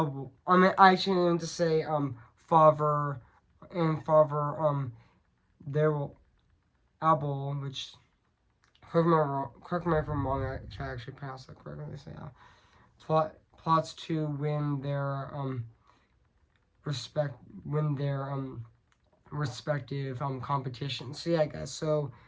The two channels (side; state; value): both; identical; correlation 1.00